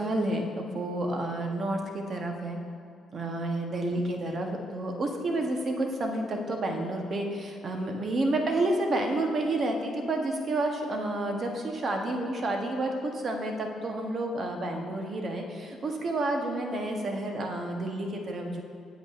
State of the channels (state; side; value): normal; both; correlation 0.76